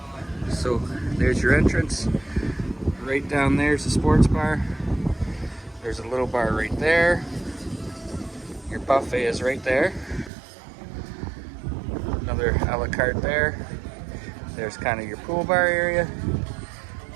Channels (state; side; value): drops out; left; at 10.3 s